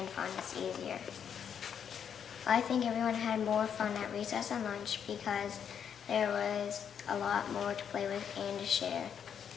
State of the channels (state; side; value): quieter; right; 8.0 dB